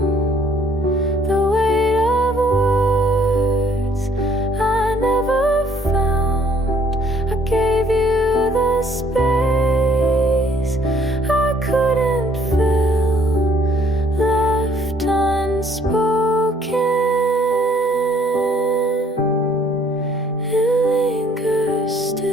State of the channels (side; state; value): both; normal; correlation 0.62